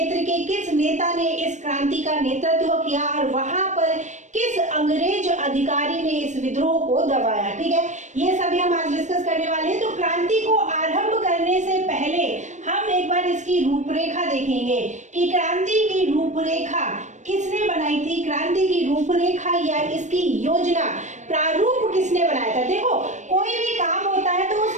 के किस नेता ने इस क्रांति का नेतृत्व किया और वहां पर किस अंग्रेज अधिकारी ने इस विद्रोह को दबाया। ठीक है, ये सभी हम आज डिस्कस करने वाले हैं। तो क्रांति को आरंभ करने से पहले हम एक बार इसकी रूपरेखा देखेंगे कि क्रांति की रूपरेखा किसने बनाई थी, क्रांति की रूपरेखा या इसकी योजना प्रारूप किसने बनाया था। देखो, कोई भी काम होता है तो उस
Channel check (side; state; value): left; late; 0.35 ms